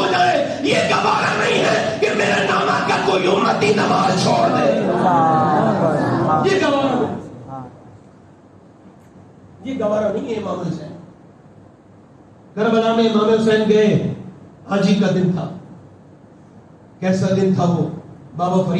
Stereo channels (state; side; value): identical; both; correlation 1.00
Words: کوئی امتی نماز چھوڑ دے. یہ گوارا نہیں، یہ گوارا نہیں ہے امام حسین. کربلا میں امام حسین گئے، حاجی کا دن تھا. کیسا دن تھا وہ؟ بابا